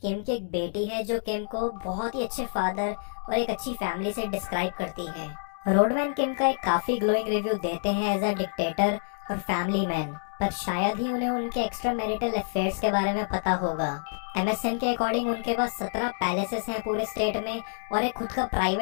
किम की एक बेटी है जो किम को बहुत ही अच्छे फादर और एक अच्छी फैमिली से डिस्क्राइब करती है। रोडमैन किम का एक काफी ग्लोइंग रिव्यू देते हैं एज अ डिक्टेटर और फैमिली मैन, पर शायद ही उन्हें उनके एक्स्ट्रा मैरिटल अफेयर्स के बारे में पता होगा। MSN के अकॉर्डिंग उनके पास 17 पैलेसेस हैं पूरे स्टेट में और एक खुद का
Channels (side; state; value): right; silent; digital silence